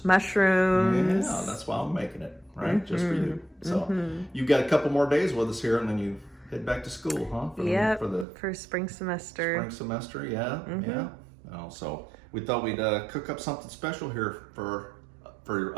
Mushrooms. Yeah, that's why I'm making it, right? Just for you. So you've got a couple more days with us here, and then you head back to school, huh? For spring semester. Spring semester, yeah. So we thought we'd cook up something special here for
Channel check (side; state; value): left; drops out; at 8.2 s